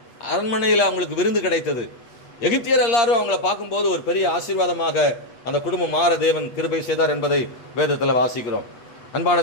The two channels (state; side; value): late; right; 8.6 ms